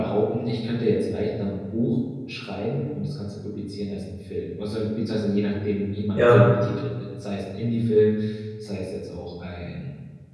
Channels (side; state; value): both; identical; correlation 1.00